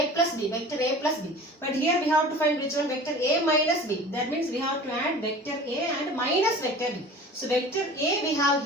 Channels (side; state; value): both; normal; correlation 0.41